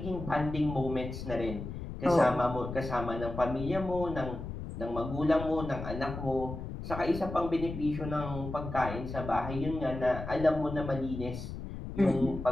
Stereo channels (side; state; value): left; noise; rumble, 8 dB below the sound